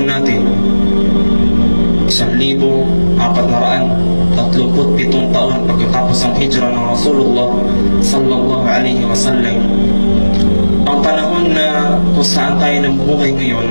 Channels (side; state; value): both; inverted; correlation -1.00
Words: natin 1437 taon pagkatapos ang hijra ng Rasulullah sallallahu alaihi wasallam. Ang panahon na kung saan tayo namuhay ngayon,